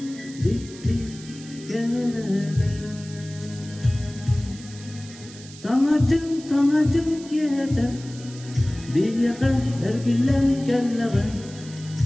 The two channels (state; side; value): noise; right; hiss, 18 dB below the sound